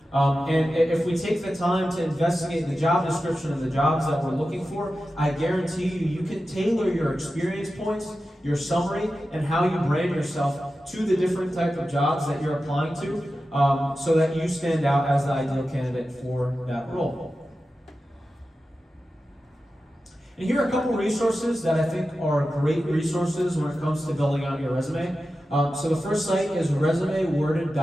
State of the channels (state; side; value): normal; both; correlation 0.93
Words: And if we take the time to investigate the job description of the jobs that we're looking for, I guarantee you can tailor your experience points, your summary, and how you brand yourself to the different type of jobs that you're applying to, so that you stand out as the ideal candidate for that role. And here are a couple resources that I think are great resources when it comes to building out your resume. So the first site is